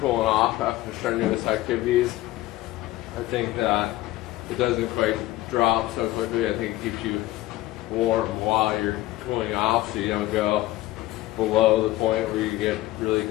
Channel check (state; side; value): quieter; right; 16.7 dB